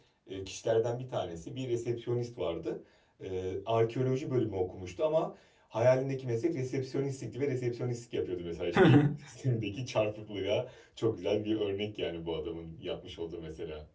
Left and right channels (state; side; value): identical; both; correlation 1.00